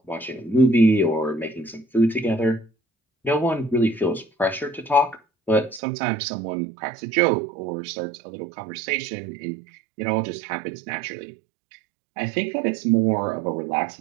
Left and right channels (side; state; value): left; drops out; at 5.8 s